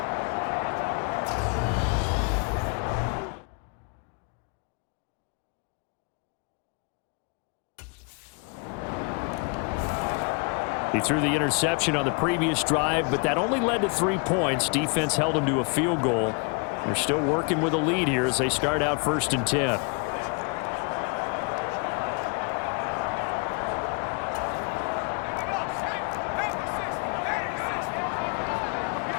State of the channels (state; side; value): quieter; right; 36.1 dB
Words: He threw the interception on the previous drive, but that only led to 3 points. Defense held him to a field goal. They're still working with a lead here as they start out 1st and 10.